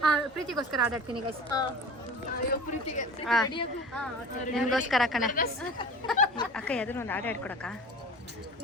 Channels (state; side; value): normal; both; correlation 0.37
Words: ಪ್ರೀತಿಗೋಸ್ಕರ ಆಡಾಡ್ತೀನಿ ಗೈಸ್, ನಿನ್ಗೋಸ್ಕರ ಕಣೆ ಅಕ್ಕ. ಯಾವ್ದಾದ್ರು ಒಂದು ಹಾಡು ಹೇಳ್ಕೊಡಕ್ಕ.